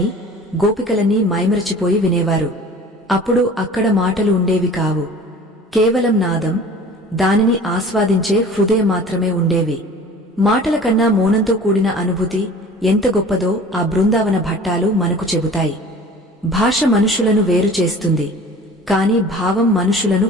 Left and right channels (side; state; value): both; normal; correlation 0.43